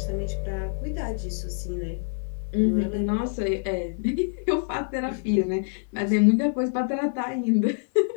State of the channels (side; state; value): right; silent; 61 dB below the other